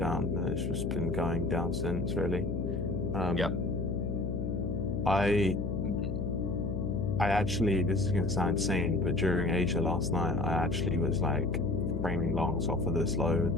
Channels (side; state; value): left; noise; hum, 2 dB below the sound